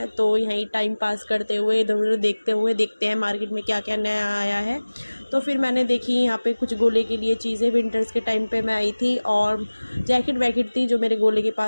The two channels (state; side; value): inverted; both; correlation -1.00